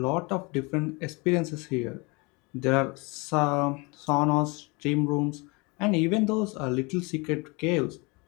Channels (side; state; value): right; quieter; 28.0 dB